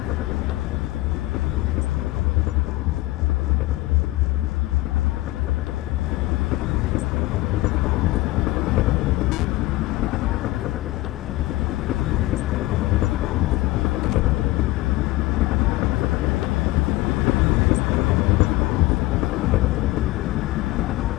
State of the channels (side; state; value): right; quieter; 18.8 dB